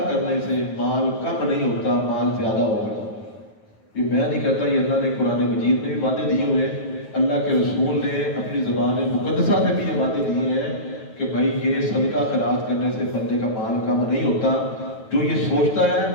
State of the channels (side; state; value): right; late; 9.3 ms